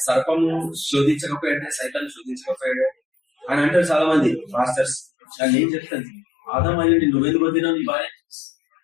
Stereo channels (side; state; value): right; drops out; at 5.1 s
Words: సర్పము శోధించకపోయాడే, సైతాన్ని శోధించకపోయాడే అని అంటారు చాలా మంది మాస్టర్స్. కానీ ఏం చెప్తాను, ఆదాం అయ్యండి నువ్వెందుకు వద్దినావు నీ భార్య,